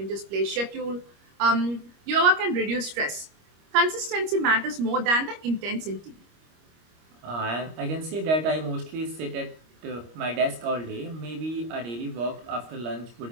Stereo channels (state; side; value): late; left; 25 ms